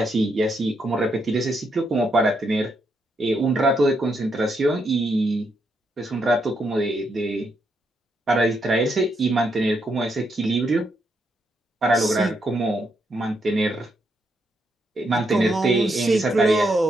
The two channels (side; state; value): both; normal; correlation 0.79